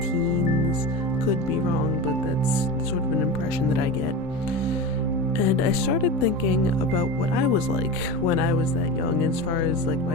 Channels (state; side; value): normal; both; correlation 0.25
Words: Could be wrong, but that's sort of an impression that I get. And I started thinking about what I was like when I was that young as far as like